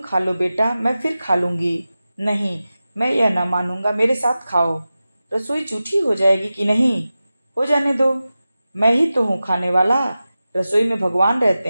लो बेटा, मैं फिर खा लूंगी। नहीं, मैं यह ना मानूंगा, मेरे साथ खाओ। रसोई जूठी हो जाएगी कि नहीं? हो जाने दो, मैं ही तो हूँ खाने वाला। रसोई में भगवान रहते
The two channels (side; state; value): both; inverted; correlation -0.94